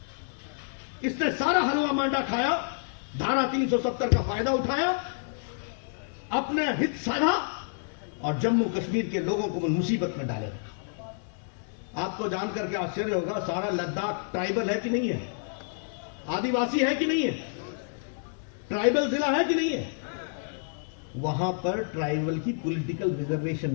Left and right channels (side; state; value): right; silent; digital silence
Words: इसने सारा हलवा मांडा खाया, धारा 370 का फायदा उठाया, अपने हित साधा और जम्मू कश्मीर के लोगों को मुसीबत में डाले रखा। आपको जानकर के आश्चर्य होगा, सारा लद्दाख ट्राइबल है कि नहीं है? आदिवासी है कि नहीं है? ट्राइबल जिला है कि नहीं है? वहां पर ट्राइबल की पॉलिटिकल रिजर्वेशन